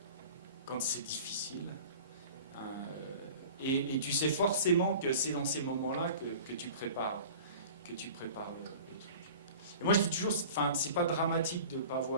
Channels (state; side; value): inverted; both; correlation -0.41